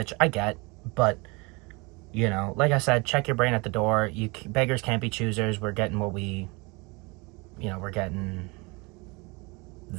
I get, but, you know, like I said, check your brain at the door. Beggars can't be choosers. We're getting what we're getting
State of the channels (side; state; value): left; quieter; 27.1 dB